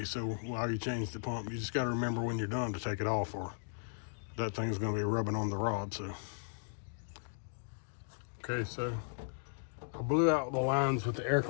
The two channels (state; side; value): silent; right; digital silence